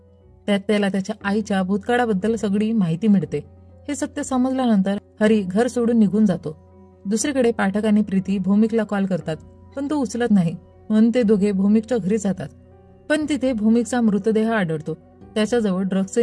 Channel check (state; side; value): identical; both; correlation 1.00